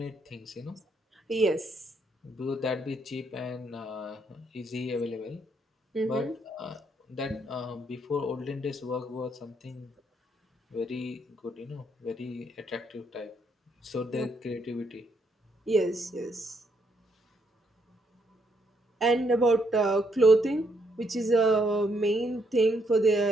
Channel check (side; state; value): both; normal; correlation 0.73